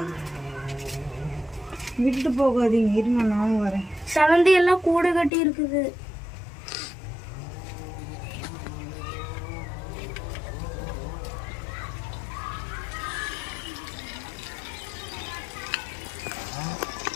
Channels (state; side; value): drops out; right; at 5.3 s